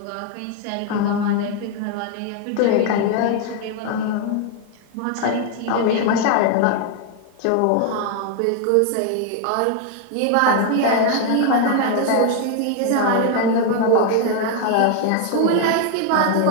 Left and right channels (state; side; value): different; both; correlation 0.00